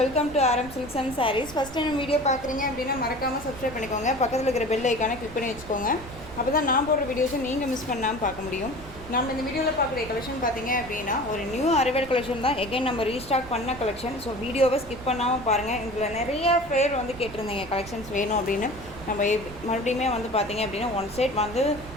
welcome to Aaram silks and sarees. First time video பார்க்குறீங்க அப்படின்னா மறக்காமல் சப்ஸ்கிரைப் பண்ணிக்கோங்க. பக்கத்தில் இருக்கிற பெல் ஐக்கானை கிளிக் பண்ணி வச்சுக்கோங்க. அப்போ தான் நான் போடுற வீடியோஸை நீங்கள் மிஸ் பண்ணாமல் பார்க்க முடியும். நம்ம இந்த வீடியோவில் பார்க்குற கலெக்ஷன் பார்த்தீங்க அப்படின்னா ஒரு நியூ அரைவல் கலெக்ஷன் தான். எகைன் நம்ம ரீஸ்டாக் பண்ண கலெக்ஷன். ஸோ வீடியோவை ஸ்கிப் பண்ணாமல் பாருங்கள். இதில் நிறைய பேர் வந்து கேட்டிருந்தீங்க கலெக்ஷன்ஸ் வேணும் அப்படின்னு. நம்ம மறுபடியுமே வந்து பார்த்தீங்க அப்படின்னா ஒன் சைட் வந்து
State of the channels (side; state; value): right; noise; rumble, 15 dB below the sound